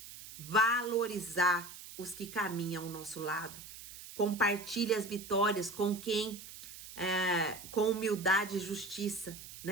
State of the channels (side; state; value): right; noise; hiss, 14 dB below the sound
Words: Valorizar os que caminham ao nosso lado. Compartilhe as vitórias com quem, com humildade e justiça,